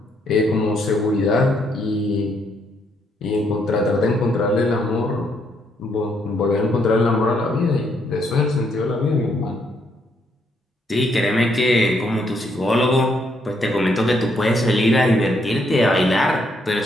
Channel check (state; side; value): normal; both; correlation 0.73